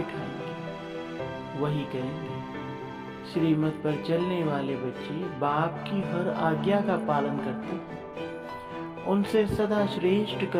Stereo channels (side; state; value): both; identical; correlation 1.00